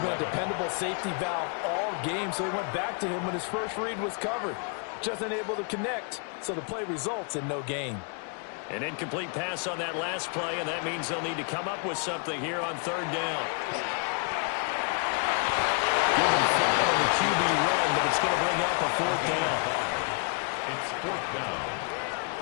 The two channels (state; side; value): quieter; right; 38.6 dB